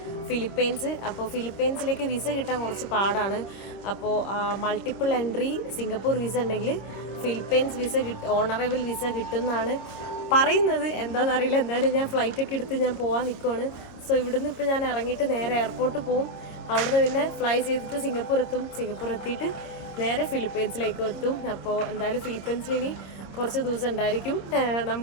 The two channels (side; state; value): right; late; 26 ms